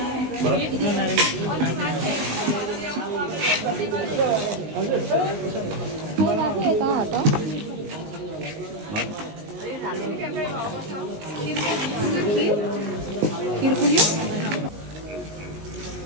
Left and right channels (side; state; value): left; late; 19 ms